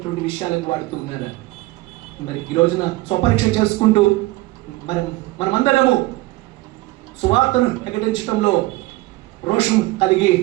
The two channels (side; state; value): left; quieter; 19.8 dB